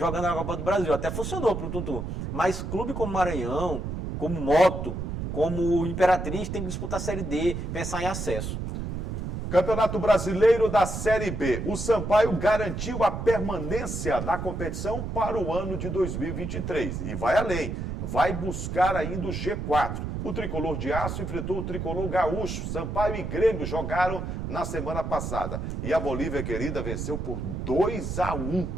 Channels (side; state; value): right; noise; rumble, 4 dB below the sound